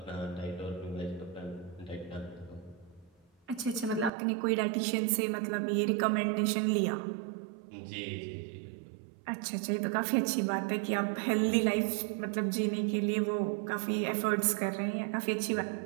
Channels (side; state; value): left; drops out; at 4.1 s